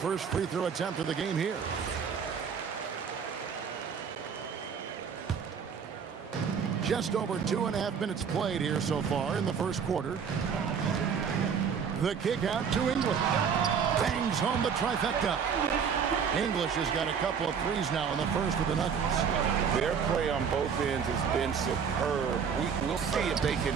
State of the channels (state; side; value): quieter; left; 6.8 dB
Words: free throw attempt of the game here. Just over 2.5 minutes played here so far in the first quarter. The kick out to English. Bangs home the trifecta. English has got a couple of threes now in the first of the Nuggets. Their play on both ends has been superb. We'll see if they can